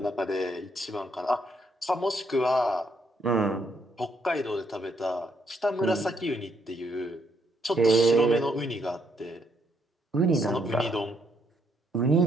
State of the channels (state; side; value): normal; both; correlation 0.73